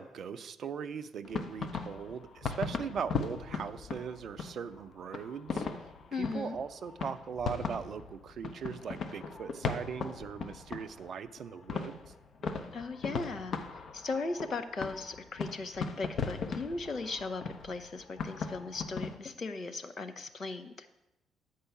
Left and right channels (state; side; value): normal; both; correlation 0.68